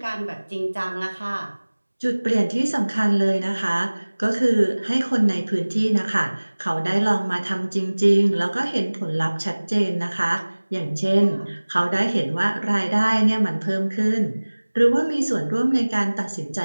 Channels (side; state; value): both; inverted; correlation -1.00